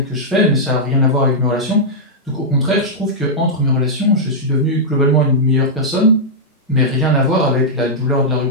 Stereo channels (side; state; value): both; normal; correlation -0.08